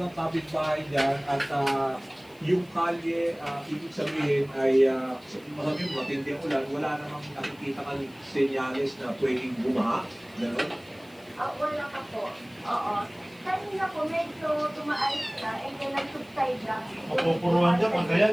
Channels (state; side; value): noise; left; hiss, 28 dB below the sound